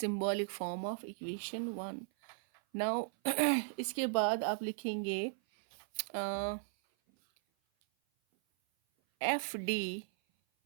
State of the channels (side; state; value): left; silent; 53 dB below the other